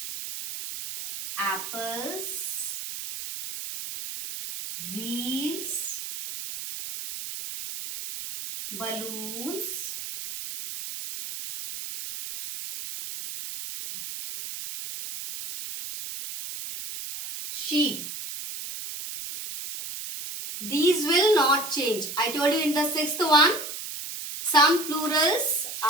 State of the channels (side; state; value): right; noise; hiss, 7 dB below the sound